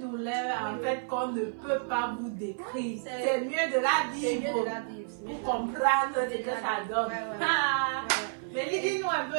douleur en fait qu'on ne peut pas vous décrire. C'est mieux de la vivre. C'est mieux de la vivre. Pour comprendre ce que ça donne. Mais dis-nous un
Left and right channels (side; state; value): left; silent; 55 dB below the other